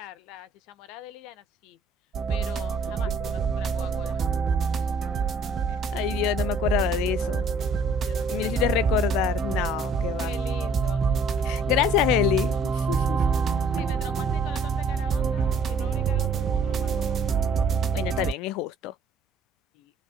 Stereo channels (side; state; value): both; normal; correlation 0.57